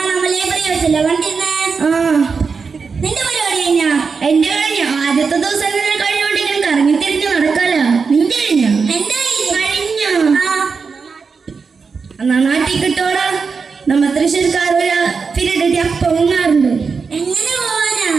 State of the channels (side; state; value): left; quieter; 5.2 dB